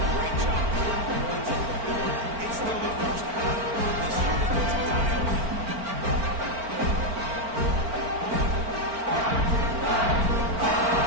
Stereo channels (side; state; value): left; late; 4.4 ms